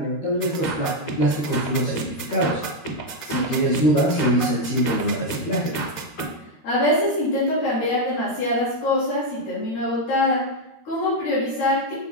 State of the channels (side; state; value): right; late; 13 ms